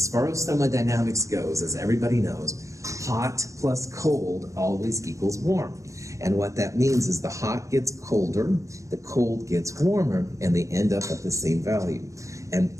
far as thermodynamics goes, as everybody knows, hot plus cold always equals warm. And what that means is the hot gets colder, the cold gets warmer, and they end up at the same value. And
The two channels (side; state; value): left; late; 0.15 ms